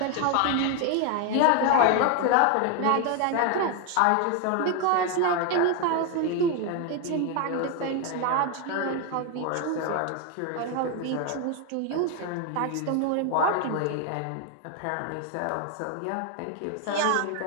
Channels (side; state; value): both; different; correlation 0.01